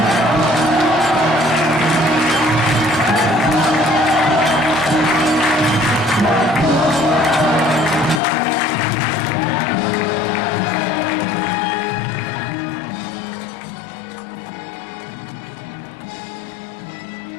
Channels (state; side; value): drops out; right; at 8.2 s